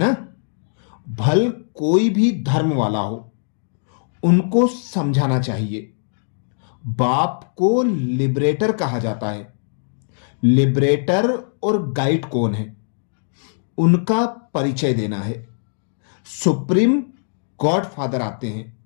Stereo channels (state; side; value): silent; right; digital silence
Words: भल कोई भी धर्म वाला हो, उनको समझाना चाहिए। बाप को लिबरेटर कहा जाता है। लिबरेटर और गाइड कौन है, उनका परिचय देना है। सुप्रीम गॉड फादर आते हैं,